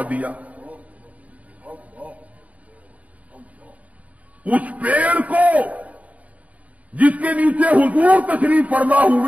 دیا۔ اس پیڑ کو جس کے نیچے حضور تشریف فرما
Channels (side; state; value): left; late; 0.070 ms